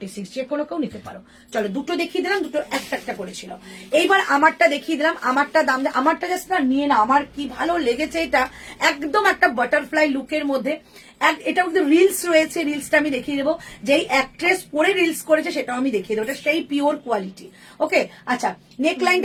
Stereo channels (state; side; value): identical; both; correlation 1.00